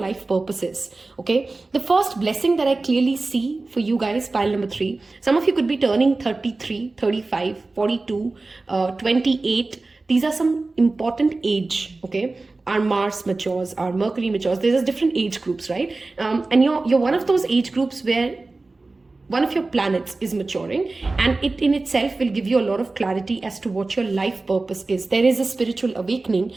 purpose is. Okay, the first blessing that I clearly see for you guys, pile number 3, some of you could be turning 33, 35, 42, 28. These are some important age, okay? Our Mars matures, our Mercury matures. There's different age groups, right? And you're one of those age groups where one of your planets is maturing, and it in itself will give you a lot of clarity as to what your life purpose is. There is a spiritual awakening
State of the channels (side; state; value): left; quieter; 3.4 dB